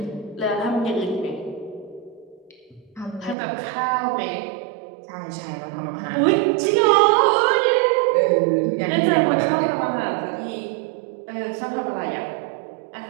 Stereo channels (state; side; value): drops out; left; at 3.4 s